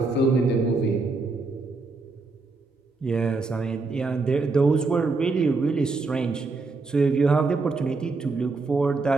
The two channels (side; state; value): left; quieter; 3.8 dB